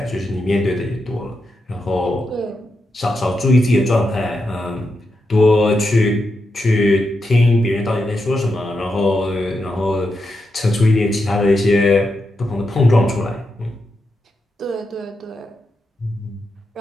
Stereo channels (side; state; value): both; normal; correlation 0.86